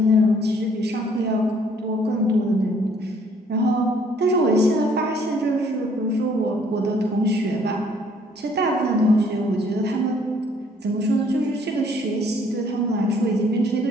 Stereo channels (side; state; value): both; normal; correlation 0.62